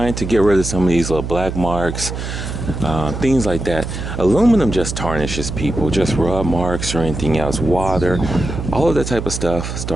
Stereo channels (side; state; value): right; noise; hum, 6 dB below the sound